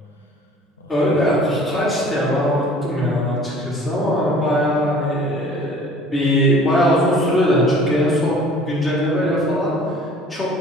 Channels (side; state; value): both; normal; correlation 0.49